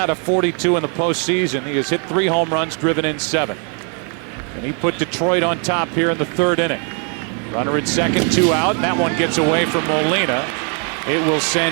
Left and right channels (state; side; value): quieter; left; 39.4 dB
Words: of 42 in the postseason. He has hit 3 home runs, driven in 7. And he put Detroit on top here in the 3rd inning. Runner at second, 2 out, and that one gets away from Molina. It will